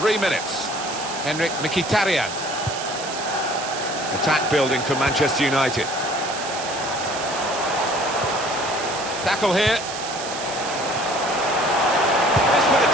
minutes. Henrik Mkhitaryan. Attack building for Manchester United. Tackle here. This with a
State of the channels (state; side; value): noise; right; hiss, 8 dB below the sound